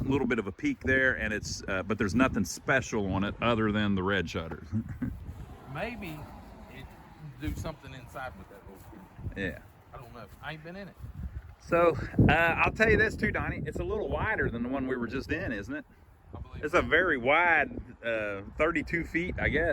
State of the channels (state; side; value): identical; both; correlation 1.00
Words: little bit of a peak there, and it's but there's nothing special on it other than the red shutters. Maybe it do something inside with that little. Yeah. I don't know. I ain't been in it. So I'll tell you this too, Donnie. It's a little wider than the one we were just in, isn't it? I believe It's a very wide, 32 feet, I